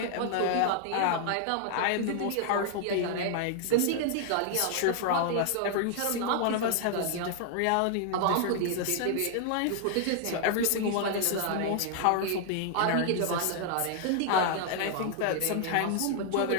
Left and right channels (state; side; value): different; both; correlation 0.00